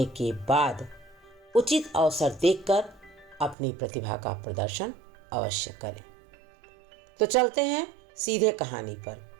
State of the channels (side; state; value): left; drops out; at 3.6 s